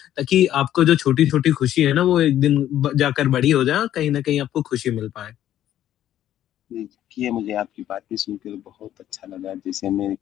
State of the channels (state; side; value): quieter; right; 11.9 dB